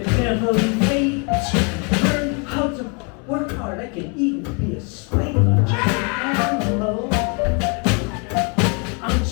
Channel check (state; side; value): quieter; right; 34.8 dB